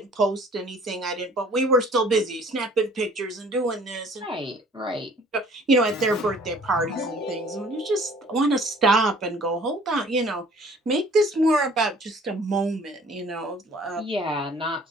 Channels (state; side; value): normal; both; correlation 0.53